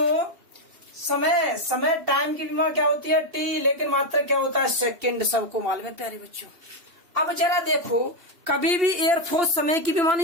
समय टाइम की विमा क्या होती है टी, लेकिन मात्रा क्या होता है सेकंड, सबको मालूम है प्यारे बच्चों। अब जरा देखो, कभी भी एयरफोर्स समय की विमा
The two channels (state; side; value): late; left; 2.9 ms